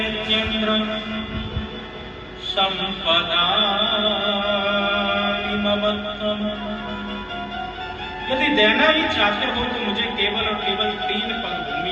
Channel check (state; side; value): identical; both; correlation 1.00